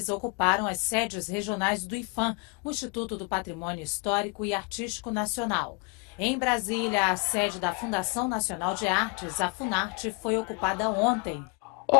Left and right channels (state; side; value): quieter; right; 31.7 dB